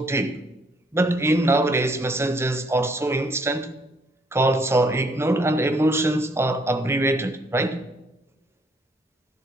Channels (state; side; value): normal; both; correlation 0.66